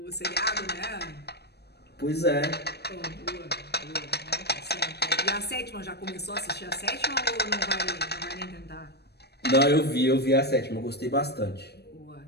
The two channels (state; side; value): late; right; 0.47 ms